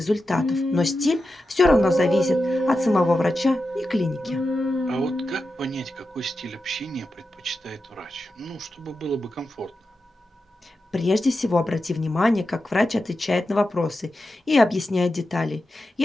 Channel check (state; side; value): normal; both; correlation 0.90